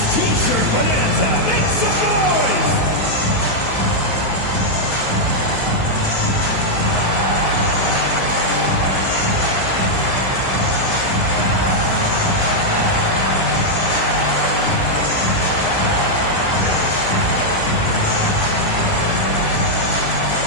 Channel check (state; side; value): late; right; 9.5 ms